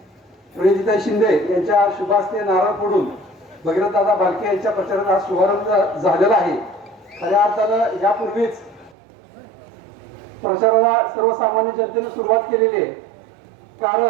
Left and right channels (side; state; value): left; drops out; at 9.0 s